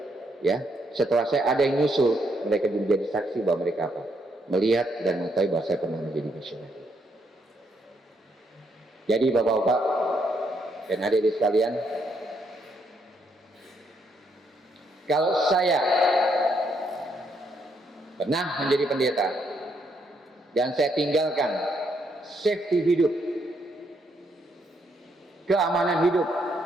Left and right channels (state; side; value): normal; both; correlation 0.75